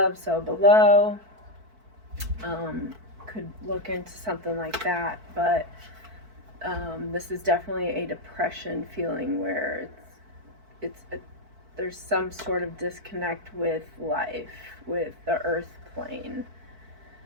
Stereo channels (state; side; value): late; left; 4.5 ms